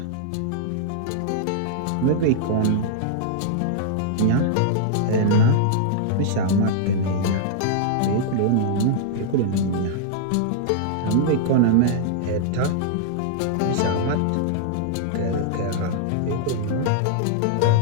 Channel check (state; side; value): different; both; correlation -0.01